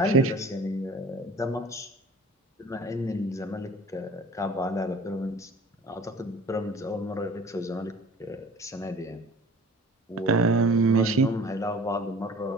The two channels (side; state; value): both; normal; correlation 0.46